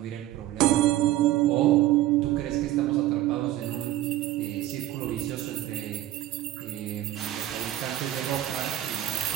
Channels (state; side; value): quieter; left; 14.4 dB